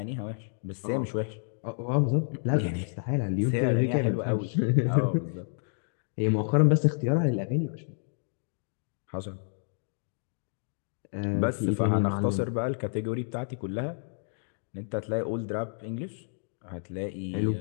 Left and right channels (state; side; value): silent; right; digital silence